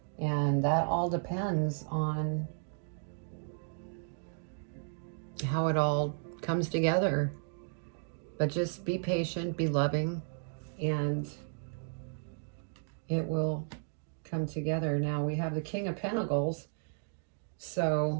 And that all depends on how it all comes together. But just be patient, be loving, and it will come together. Now we have the King of Pentacles.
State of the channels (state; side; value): silent; left; digital silence